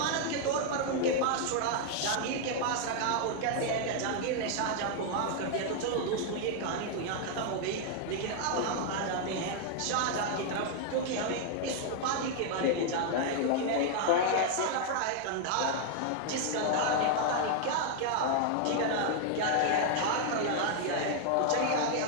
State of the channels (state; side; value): different; both; correlation 0.00